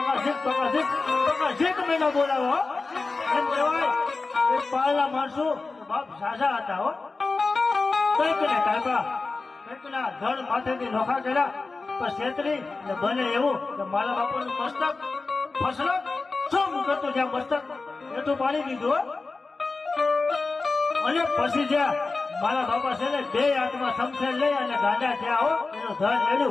ઝીક ભાગા ઝીક ભાગા ઝીક મેળા બોલાવો. એમ કહેવાય કે પાળના માણસો બાપ ઝાઝા હતા હો. કંઈક ને કાકા કંઈક ના ધડ માથેથી નોખા કર્યા પણ છેતરી ને બને એવું કે મારા બાપાનું મસ્તક ફસલક શું કરતું જ્યાં મસ્તક એટલું પાડી દીધું. અને પછી જ્યાં મારા બાપા છે ને બે હાથમાં સમસેર લઈ અને ગાંડા થયા હો એનું ધન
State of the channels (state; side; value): quieter; right; 3.9 dB